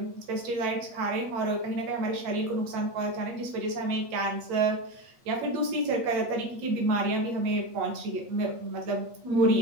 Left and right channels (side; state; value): left; late; 8.4 ms